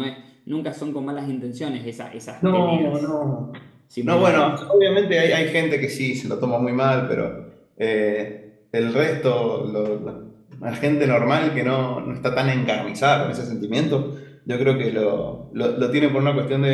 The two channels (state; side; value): identical; both; correlation 1.00